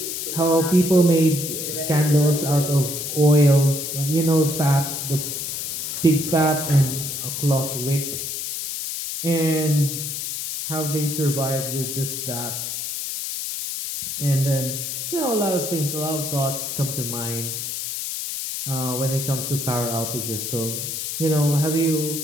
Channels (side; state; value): left; noise; hiss, 4 dB below the sound